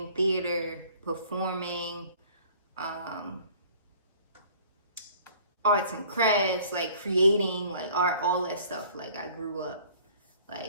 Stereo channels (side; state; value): both; inverted; correlation -0.53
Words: theater, performing, arts and crafts, like creating, like art, all that stuff. Like I grew up